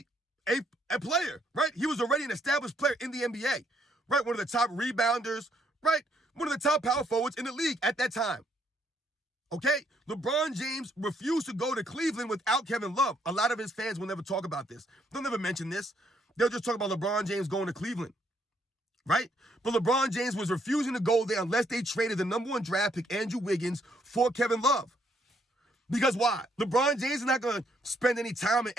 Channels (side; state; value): both; normal; correlation 0.71